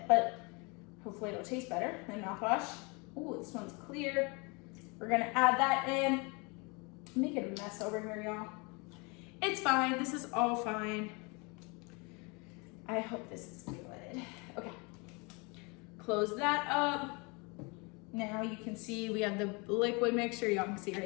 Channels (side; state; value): right; quieter; 29.7 dB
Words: but hopefully it'll taste better than mouthwash. Ooh, this one's clear. We're gonna add that in. Make it a mess over here, y'all. It's fine, this is all fine. I hope this is good. Okay, close that up. Now you can see we have the liquid mixture, y'all can see